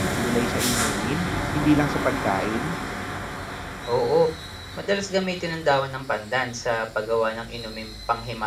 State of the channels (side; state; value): both; identical; correlation 1.00